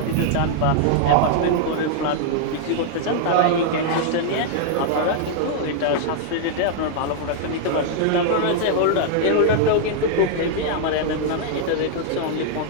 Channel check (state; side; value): different; both; correlation -0.01